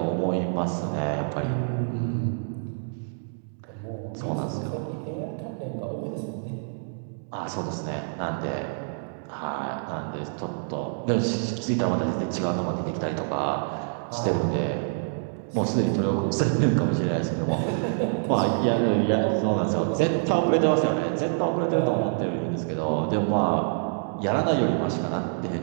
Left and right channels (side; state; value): left; silent; digital silence